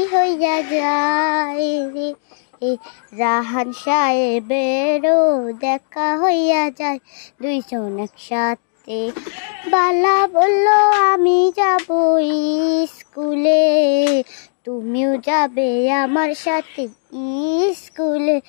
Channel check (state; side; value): silent; right; digital silence